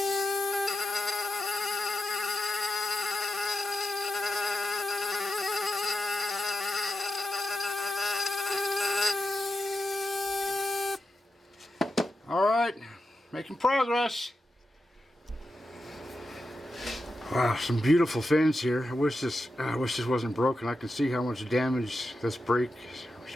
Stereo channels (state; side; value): normal; both; correlation 0.89